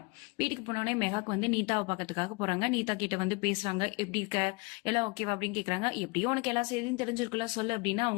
வீட்டுக்கு போனோடனே மெகாக்கு வந்து நீதாவை பார்க்கறதுக்காக போறாங்க. நீதா கிட்ட வந்து பேசுறாங்க, எப்படி இருக்க, எல்லாம் ஓகேவா அப்படின்னு கேக்குறாங்க. எப்படியோ உனக்கு எல்லா செய்தியும் தெரிஞ்சிருக்குல்ல சொல்லு அப்படின்னு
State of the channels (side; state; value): right; quieter; 28.2 dB